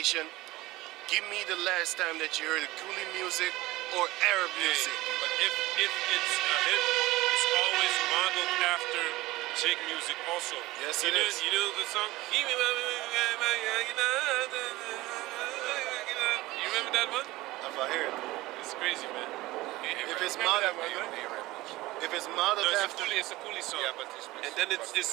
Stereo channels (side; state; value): left; quieter; 18.8 dB